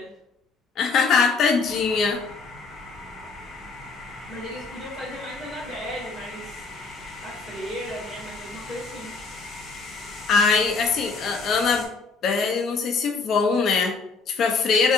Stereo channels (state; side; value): quieter; right; 4.4 dB